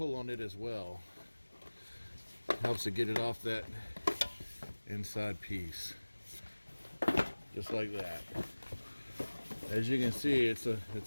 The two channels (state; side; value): inverted; both; correlation -1.00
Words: on it as well. Helps to get it off that inside piece. Just like that. As you can see, it's a